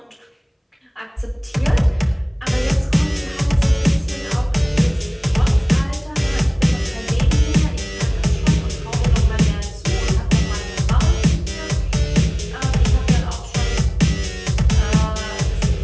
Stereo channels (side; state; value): both; identical; correlation 1.00